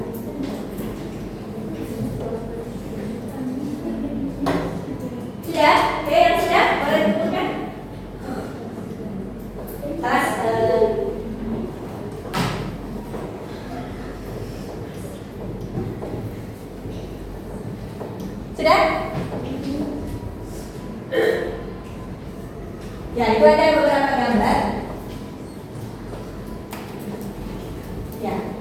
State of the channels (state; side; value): identical; both; correlation 1.00